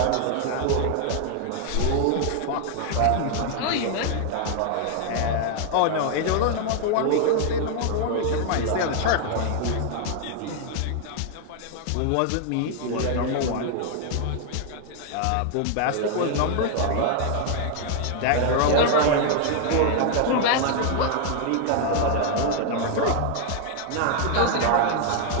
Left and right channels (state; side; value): different; both; correlation 0.00